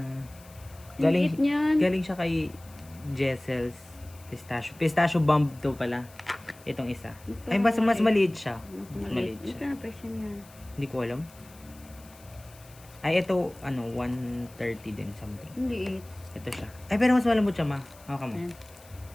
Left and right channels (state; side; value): noise; left; hiss, 24 dB below the sound